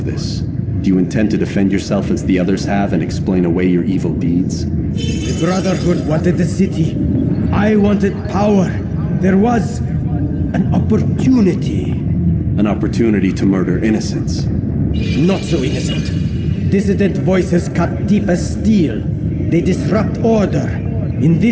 this? Do you intend to defend yourself as the others have and explain away your evil deeds? The Brotherhood wanted the city. I wanted power. There was an opportunity. An opportunity to murder innocents. Not so innocent. Dissident voices cut deep as steel. They disrupt order. In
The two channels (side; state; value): both; identical; correlation 1.00